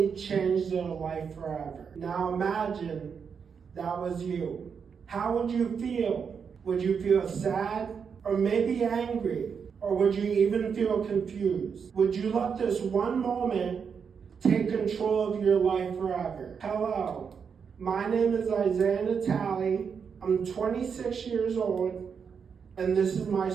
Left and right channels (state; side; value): quieter; left; 6.4 dB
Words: change their life forever. Now imagine that was you. How would you feel? Would you feel sad or maybe angry? Or would you even feel confused? Would you let this one moment take control of your life forever? Hello, my name is Isaiah Natali. I'm 26 years old, and this is my